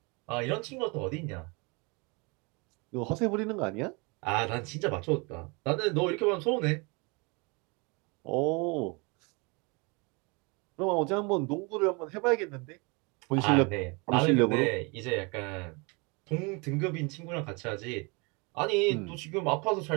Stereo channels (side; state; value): left; quieter; 29.5 dB